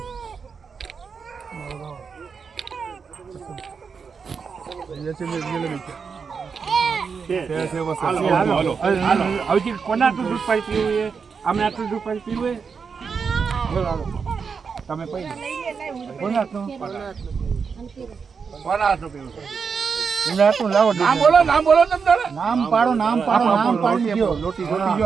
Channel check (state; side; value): quieter; left; 5.7 dB